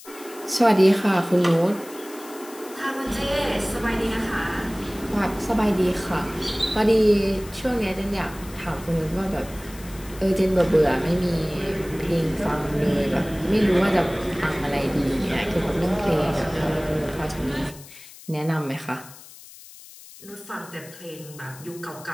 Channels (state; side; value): noise; left; hiss, 19 dB below the sound